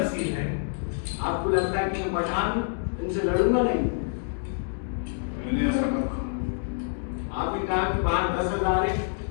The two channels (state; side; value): silent; right; digital silence